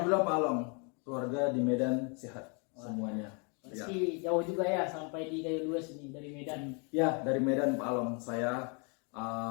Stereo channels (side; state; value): right; quieter; 35.4 dB